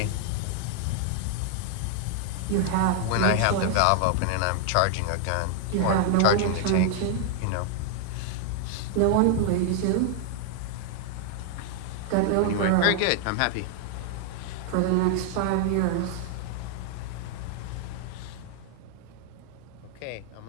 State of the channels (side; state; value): both; different; correlation 0.00